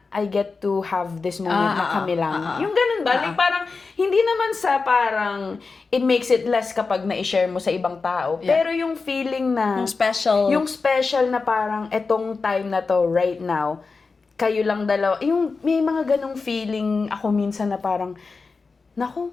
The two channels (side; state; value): right; quieter; 4.4 dB